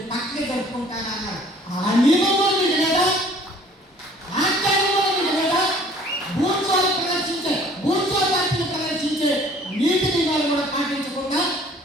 పక్కకి జరుపుకుంటానన్నారు. ఆ నియమంలో మీకు లేదా? ఆచారంలో మీకు లేదా? బూర్జువా పార్టీని ప్రదర్శించే నీతి నియమాలు కూడా పాటించకుండా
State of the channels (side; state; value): both; normal; correlation 0.54